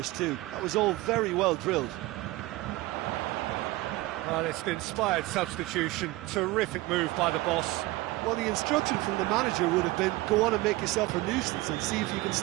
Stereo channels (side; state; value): left; quieter; 19.3 dB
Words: too. That was all very well drilled. Well, it's an inspired substitution. Terrific move by the boss. Well, the instruction from the manager would have been, go on and make yourself a nuisance and see if you can